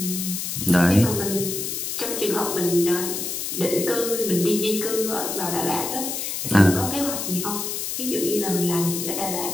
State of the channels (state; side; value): noise; left; hiss, 4 dB below the sound